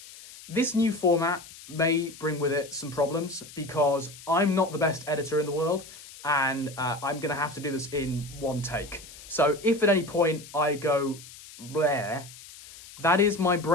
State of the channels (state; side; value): noise; left; hiss, 18 dB below the sound